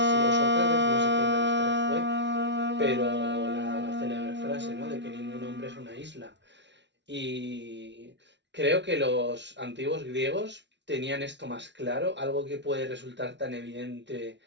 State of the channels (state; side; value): late; left; 0.51 ms